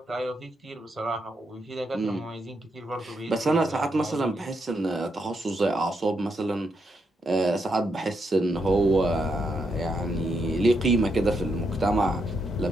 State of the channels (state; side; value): normal; both; correlation 0.80